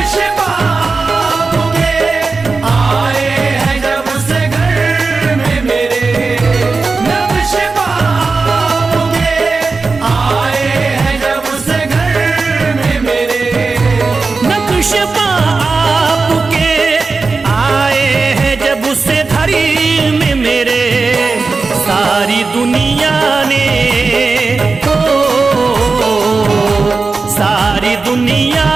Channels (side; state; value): left; quieter; 4.2 dB